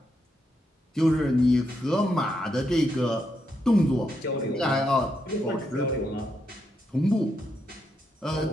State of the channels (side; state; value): both; normal; correlation 0.81